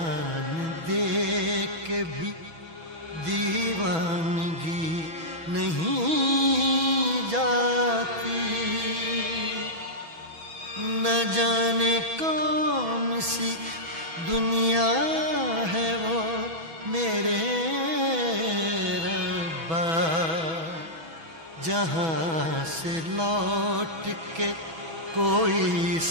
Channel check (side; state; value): left; late; 6.1 ms